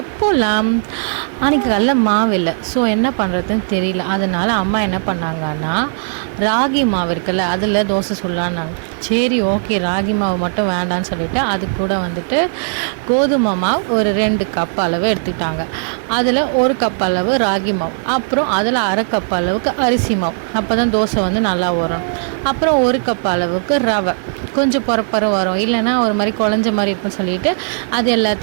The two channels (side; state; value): left; silent; 68 dB below the other